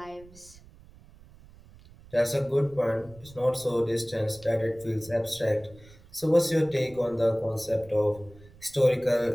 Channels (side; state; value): right; noise; rumble, 23 dB below the sound